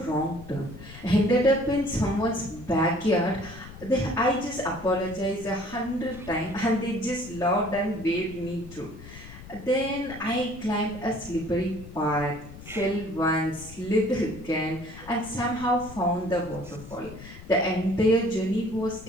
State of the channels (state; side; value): noise; left; rumble, 16 dB below the sound